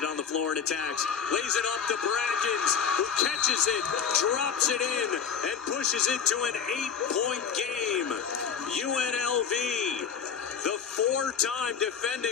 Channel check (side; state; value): right; quieter; 7.0 dB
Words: on the floor and attacks. Lays it up to Brackens, who catches it, drops it in, and pushes it to an 8-point game. UNLV, the 4-time